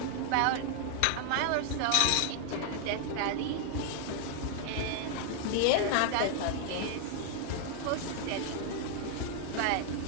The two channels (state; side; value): different; both; correlation 0.00